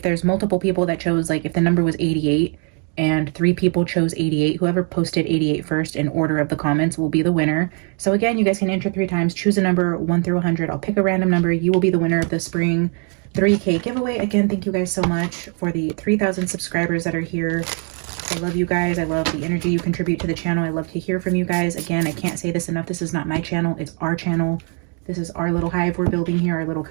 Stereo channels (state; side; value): quieter; left; 39.6 dB